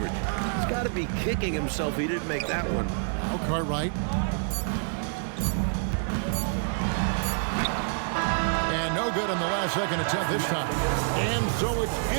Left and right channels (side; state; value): left; silent; digital silence